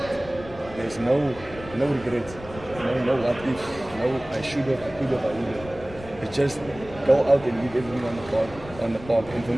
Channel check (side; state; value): left; noise; rumble, 16 dB below the sound